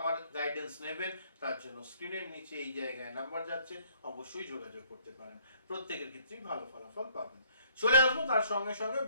গাইডেন্স নেবেন, তার জন্য স্ক্রিনের নিচে এই জায়গায় নাম্বার যাচ্ছে, অবশ্যই যোগাযোগ করতে পারেন, প্রত্যেকের ক্ষেত্রেই ভালো ফলাফল পাবেন। চলে আসবো তার সঙ্গে সঙ্গে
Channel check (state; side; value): inverted; both; correlation -0.64